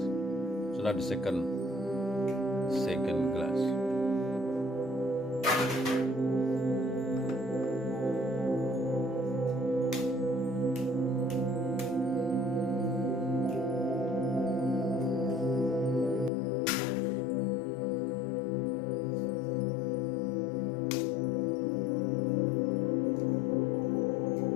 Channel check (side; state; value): right; drops out; at 16.3 s